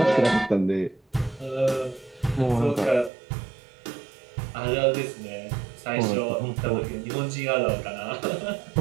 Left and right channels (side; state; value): left; drops out; at 3.1 s